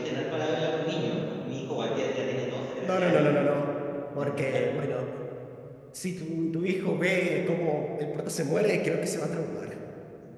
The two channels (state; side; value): identical; both; correlation 1.00